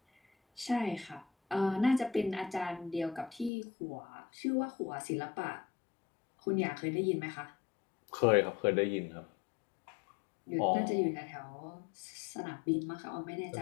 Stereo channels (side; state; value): right; drops out; at 3.5 s